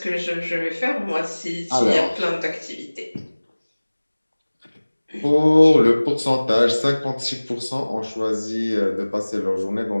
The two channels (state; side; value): inverted; both; correlation -1.00